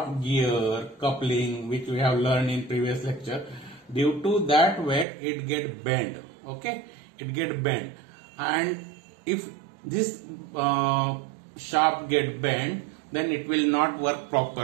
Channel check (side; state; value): left; drops out; at 5.1 s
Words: gear, coupling, which we have learned in previous lecture, due to that weight it get bent. Okay, it get bent, and if this shaft get bent, then it will not work